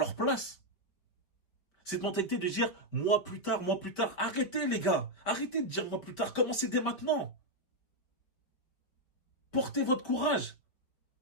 place. Cette mentalité de dire moi plus tard. Arrêtez, les gars. Arrêtez de dire moi plus tard. Commencez dès maintenant. Portez votre courage.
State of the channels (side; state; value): right; late; 5.2 ms